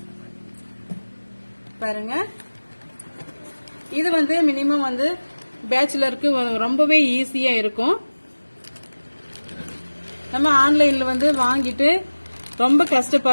பாருங்க, இது மினிமம் பேச்சுலருக்கு ரொம்பவே ஈஸியா இருக்கும். நம்ம ஆன்லைன்ல வாங்கிட்டு ரொம்ப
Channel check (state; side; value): inverted; both; correlation -1.00